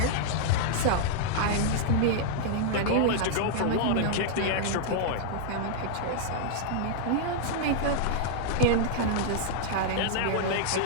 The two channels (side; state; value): both; different; correlation -0.01